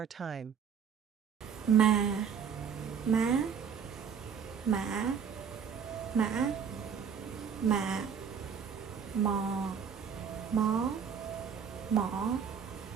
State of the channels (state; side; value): quieter; left; 7.1 dB